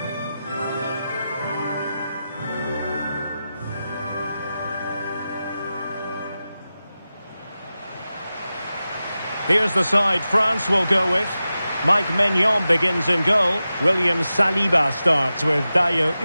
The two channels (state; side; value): inverted; both; correlation -0.93